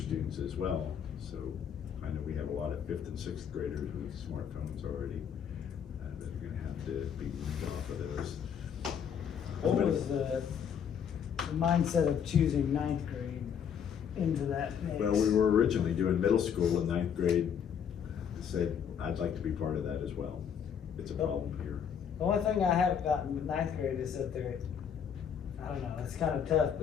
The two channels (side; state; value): right; quieter; 7.9 dB